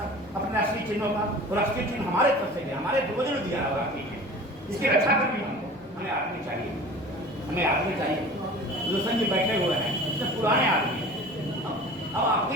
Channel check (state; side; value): normal; both; correlation 0.41